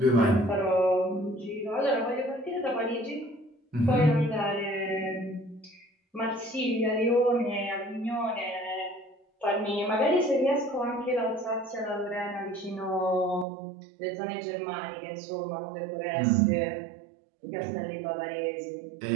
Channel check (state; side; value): drops out; left; at 13.5 s